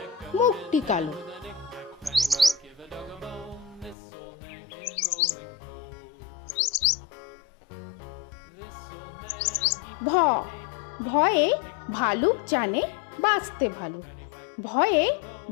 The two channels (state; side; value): drops out; right; at 4.0 s